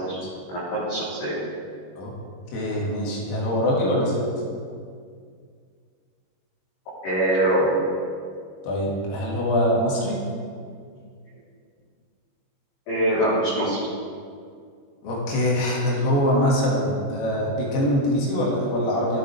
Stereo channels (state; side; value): late; right; 21 ms